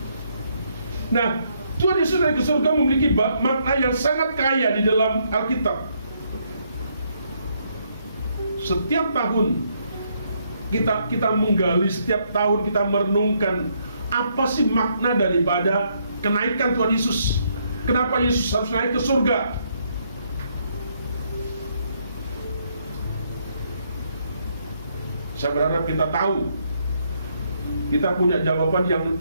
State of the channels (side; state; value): both; inverted; correlation -0.73